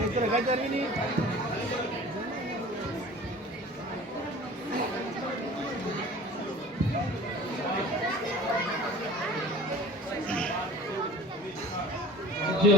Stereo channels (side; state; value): both; normal; correlation 0.43